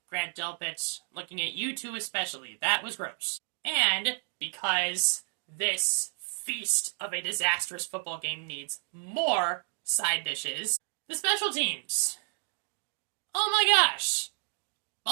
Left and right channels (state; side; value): silent; left; 57 dB below the other